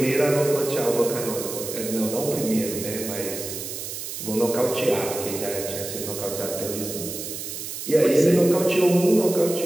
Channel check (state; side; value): noise; right; hiss, 7 dB below the sound